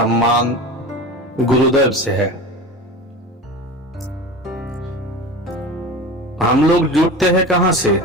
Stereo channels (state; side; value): normal; both; correlation 0.32